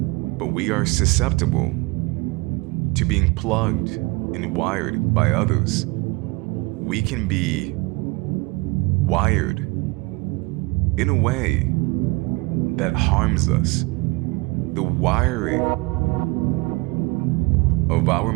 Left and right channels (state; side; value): quieter; left; 24.0 dB